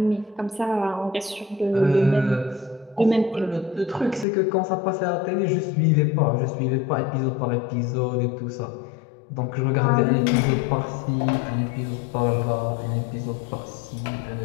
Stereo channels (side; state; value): right; drops out; at 4.2 s